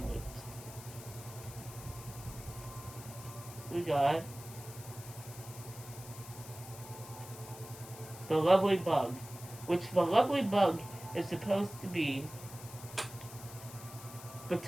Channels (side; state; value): left; noise; hiss, 15 dB below the sound